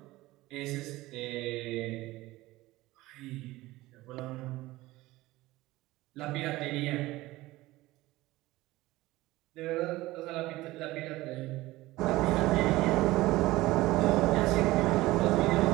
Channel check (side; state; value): left; quieter; 18.5 dB